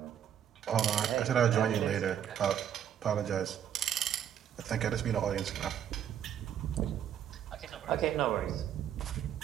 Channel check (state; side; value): quieter; left; 9.7 dB